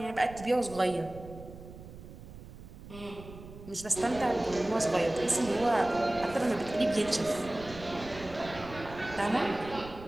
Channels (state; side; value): noise; right; rumble, 15 dB below the sound